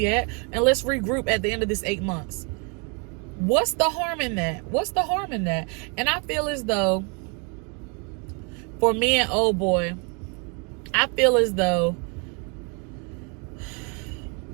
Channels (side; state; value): left; quieter; 34.0 dB